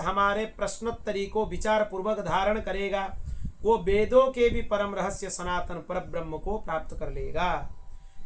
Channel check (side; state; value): both; identical; correlation 1.00